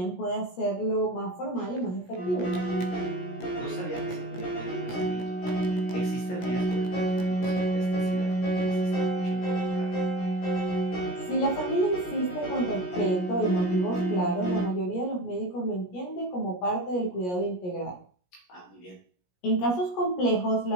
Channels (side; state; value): right; late; 17 ms